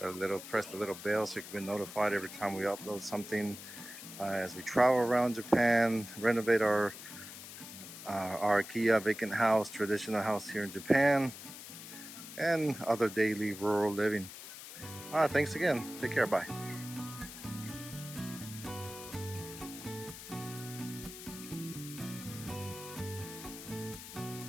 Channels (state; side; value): noise; left; hiss, 12 dB below the sound